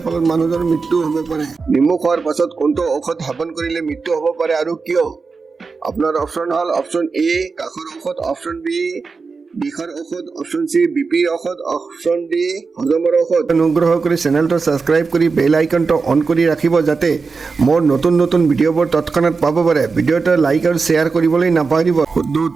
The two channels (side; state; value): left; quieter; 4.6 dB